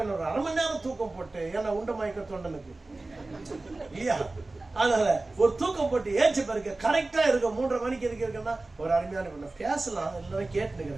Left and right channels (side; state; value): left; quieter; 3.1 dB